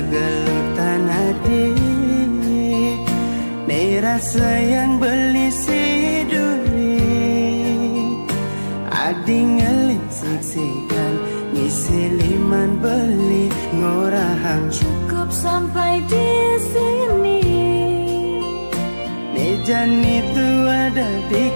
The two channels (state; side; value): inverted; both; correlation -1.00